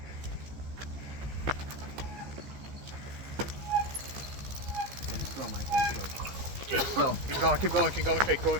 Keep going. Quick.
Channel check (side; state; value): left; late; 15 ms